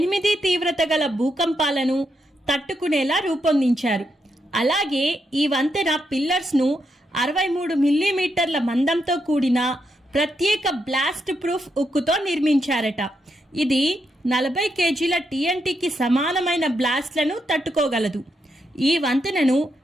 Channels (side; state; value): both; normal; correlation 0.82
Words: తీవ్రత గల భూకంపాలను తట్టుకునేలా రూపొందించారు. అలాగే ఈ వంతెన పిల్లర్స్ను 63 మిల్లీమీటర్ల మందంతో కూడిన ప్రత్యేక బ్లాస్ట్ ప్రూఫ్ ఉక్కుతో నిర్మించారట. ఇది 40 కేజీల TNTకి సమానమైన బ్లాస్ట్లను తట్టుకోగలదు. ఈ వంతెనను